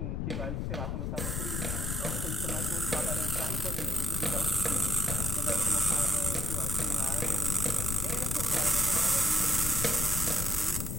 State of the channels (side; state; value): left; noise; rumble, 2 dB below the sound